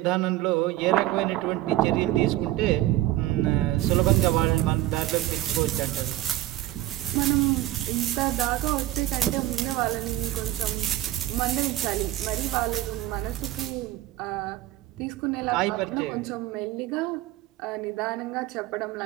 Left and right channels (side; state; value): left; quieter; 15.3 dB